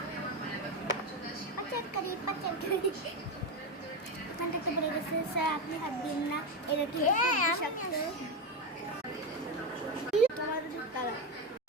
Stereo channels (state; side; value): normal; both; correlation 0.13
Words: পাচারকারী ওখানটাতে পড়ে গেছে। স্যার আপনি হাত দিন না, এটা কি